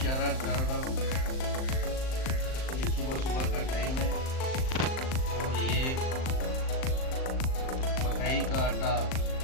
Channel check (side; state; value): right; late; 38 ms